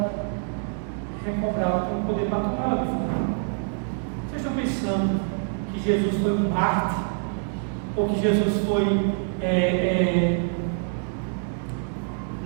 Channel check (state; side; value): silent; left; 61 dB below the other